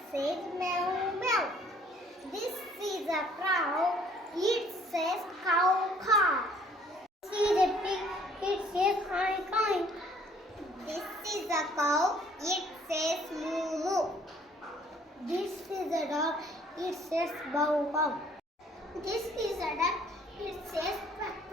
says meow, meow. This is a cow. It says cow, cow. This is a pig. It says coin, coin. This is a cow. It says moo, moo. This is a dog. It says bow, bow. This is a duck. It says quack,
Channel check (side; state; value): both; normal; correlation 0.59